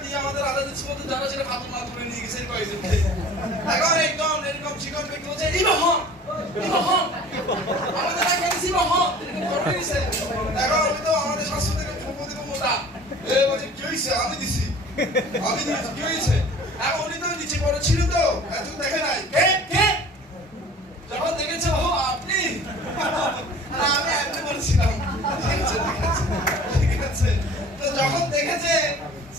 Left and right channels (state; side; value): normal; both; correlation 0.45